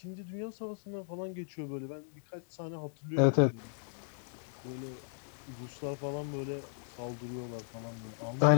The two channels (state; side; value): silent; right; digital silence